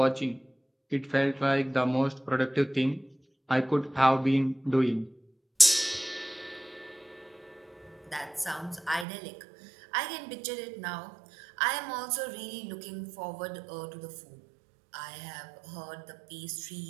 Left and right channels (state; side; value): drops out; left; at 9.1 s